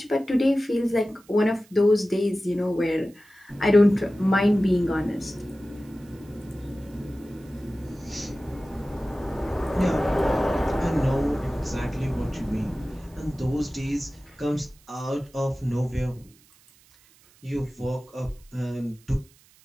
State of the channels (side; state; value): right; noise; hiss, 29 dB below the sound